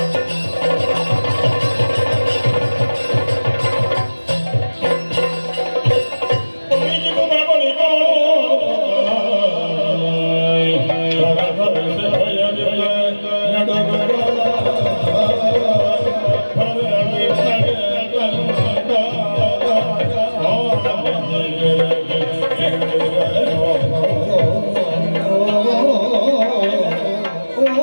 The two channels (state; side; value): inverted; both; correlation -1.00